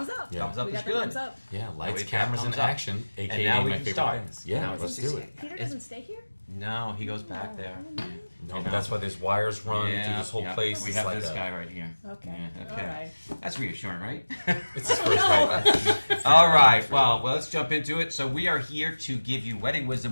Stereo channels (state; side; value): inverted; both; correlation -1.00